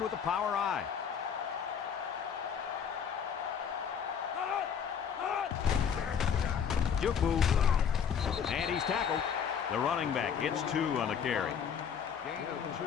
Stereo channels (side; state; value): right; quieter; 7.5 dB